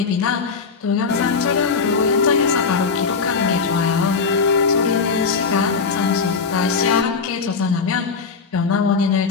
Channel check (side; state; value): right; quieter; 5.1 dB